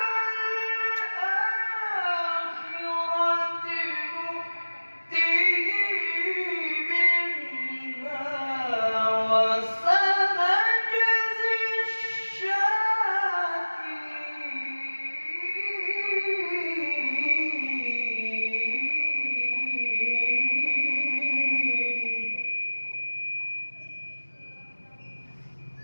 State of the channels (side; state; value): both; inverted; correlation -1.00